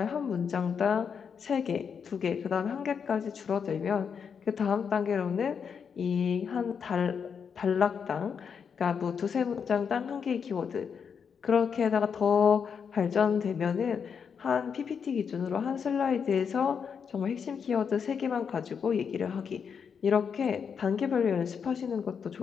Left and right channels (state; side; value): quieter; right; 6.7 dB